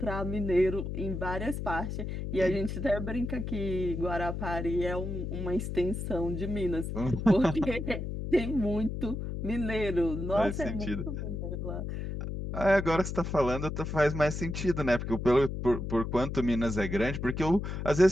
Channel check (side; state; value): left; noise; hum, 4 dB below the sound